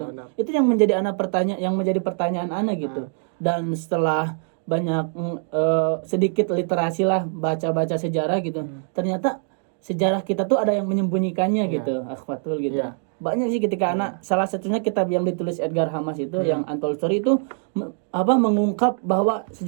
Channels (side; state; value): left; silent; 60 dB below the other